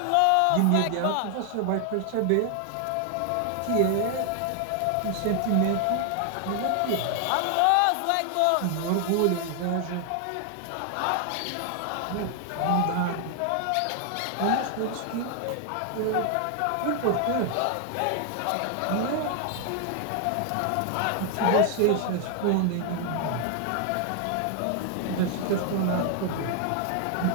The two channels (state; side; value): different; both; correlation 0.00